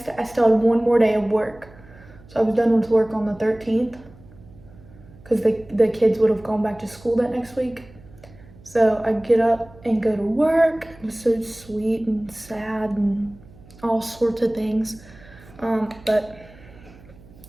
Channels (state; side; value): noise; right; hum, 23 dB below the sound